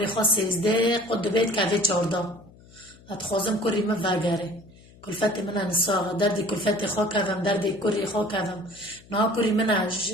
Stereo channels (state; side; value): noise; left; hum, 24 dB below the sound